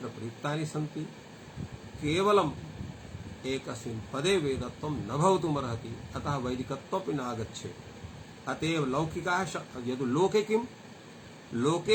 प्रयुक्तानि सन्ति केवलम् एकस्मिन् पदे वेदत्वं न भवितुमर्हति अतः वैदिकत्वमपि नागच्छेत् अतएव लौकिकाः यदि लोके किं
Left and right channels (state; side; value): identical; both; correlation 1.00